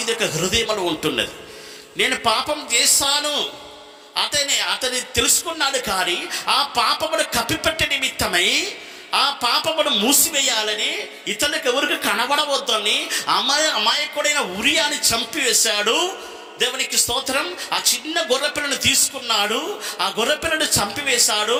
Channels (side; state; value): both; identical; correlation 1.00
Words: యొక్క హృదయంలో ఉంటున్నది. నేను పాపం చేశాను అతని తెలుసుకున్నాడు. కానీ ఆ పాపమును కప్పిపెట్టే నిమిత్తమై ఆ పాపమును మూసివేయాలని ఇతనికి ఎవరికి కనబడవద్దని అమాయకుడైన ఉరియాని చంపివేశాడు. దేవునికి స్తోత్రం. ఆ చిన్న గొర్రెపిల్లను తీసుకున్నాడు, ఆ గొర్రెపిల్లను చంపివేశాడు.